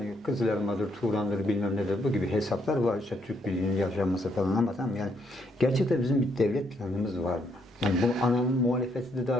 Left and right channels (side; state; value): both; normal; correlation 0.73